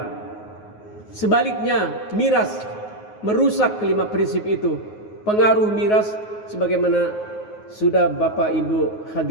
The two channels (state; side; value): late; right; 9.5 ms